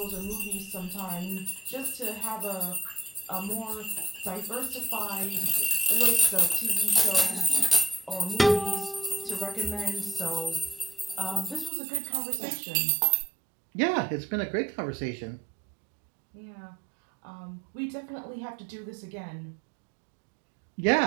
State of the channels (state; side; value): drops out; left; at 11.7 s